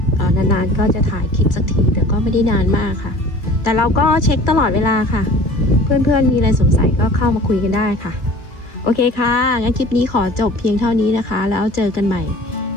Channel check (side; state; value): right; late; 2.3 ms